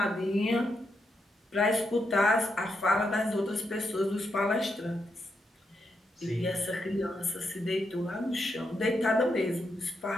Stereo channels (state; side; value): normal; both; correlation 0.82